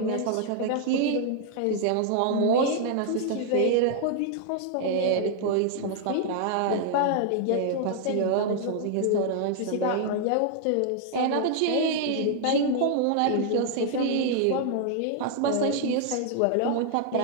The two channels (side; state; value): both; different; correlation 0.00